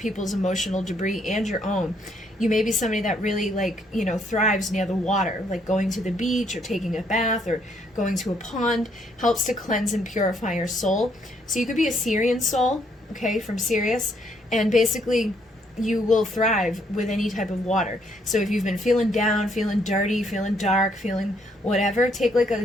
emotional debris and your own. You may be somebody that really, like, you know, thrives near the water, like going to the beach or taking a bath or going to a pond helps to cleanse and purify your soul. So you could be a Syrian soul, okay, from Sirius, and basically you will thrive with any type of water. So if you've been feeling down, feeling dirty, feeling dark, feeling whatever, take like a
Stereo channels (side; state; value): both; normal; correlation 0.70